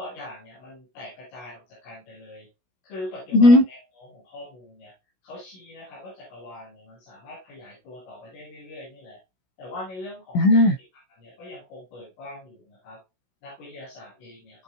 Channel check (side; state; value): right; late; 16 ms